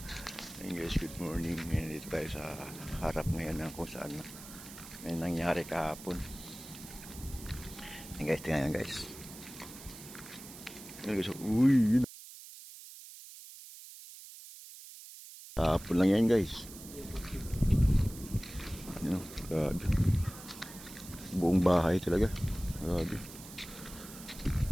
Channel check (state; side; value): noise; right; hiss, 15 dB below the sound